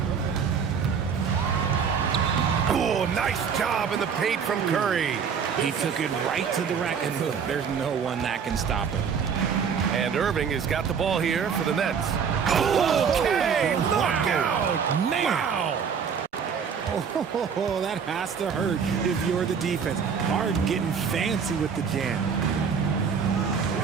Oh, nice job in the paint from Curry. He took it right to the rack, and look, there's no one that can stop him. And Irving has got the ball here for the Nets. Okay, look out! Man! Wow! Oh, that has to hurt if you're the defense. Harden getting fancy with the jam.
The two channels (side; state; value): left; quieter; 6.7 dB